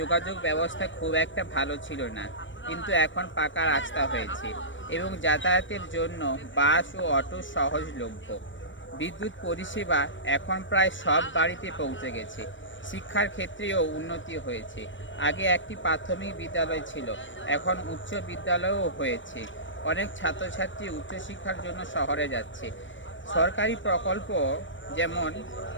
ব্যবস্থা খুব একটা ভালো ছিল না, কিন্তু এখন পাকা রাস্তা হয়েছে এবং যাতায়াতের জন্য বাস ও অটো সহজলভ্য। বিদ্যুৎ পরিষেবা এখন প্রায় সব বাড়িতে পৌঁছে গেছে। শিক্ষার ক্ষেত্রেও উন্নতি হয়েছে। আগে একটি প্রাথমিক বিদ্যালয় ছিল, এখন উচ্চ বিদ্যালয়ও হয়েছে। অনেক ছাত্রছাত্রী উচ্চশিক্ষার জন্য শহরে যাচ্ছে। সরকারি প্রকল্প যেমন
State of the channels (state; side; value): late; right; 0.56 ms